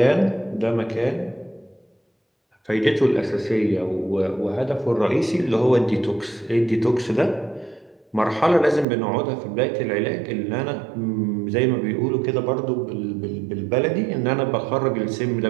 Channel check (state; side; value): drops out; left; at 8.8 s